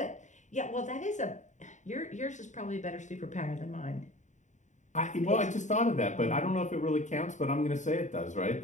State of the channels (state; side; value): late; right; 0.35 ms